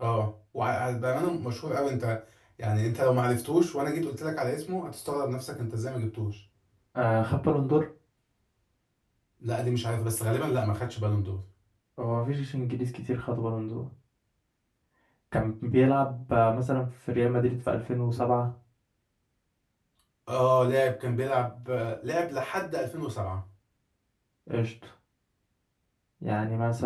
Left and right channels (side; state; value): both; identical; correlation 1.00